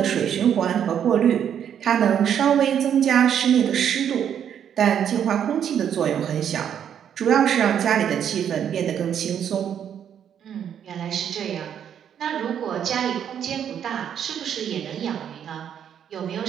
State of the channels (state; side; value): quieter; left; 8.9 dB